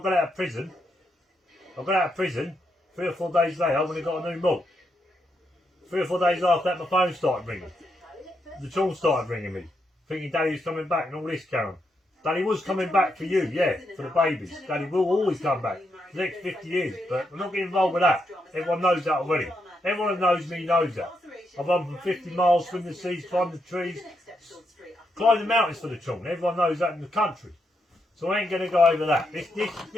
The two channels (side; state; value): both; normal; correlation 0.81